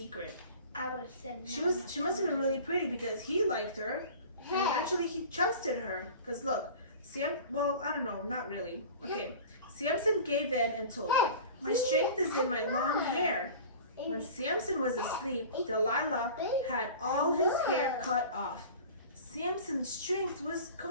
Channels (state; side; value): inverted; both; correlation -0.39